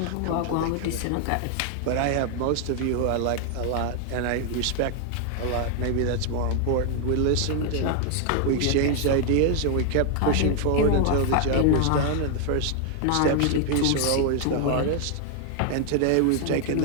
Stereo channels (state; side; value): different; both; correlation 0.00